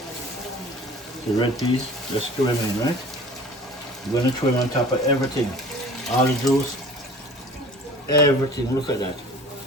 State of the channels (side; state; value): both; normal; correlation 0.45